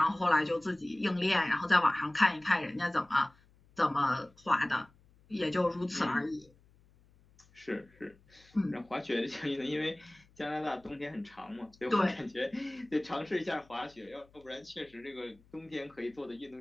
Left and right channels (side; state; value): left; noise; hum, 29 dB below the sound